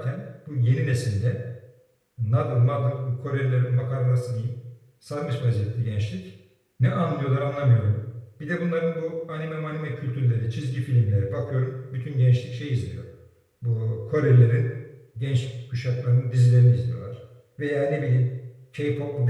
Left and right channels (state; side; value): identical; both; correlation 1.00